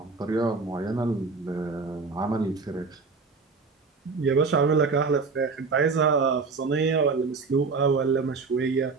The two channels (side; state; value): left; quieter; 4.5 dB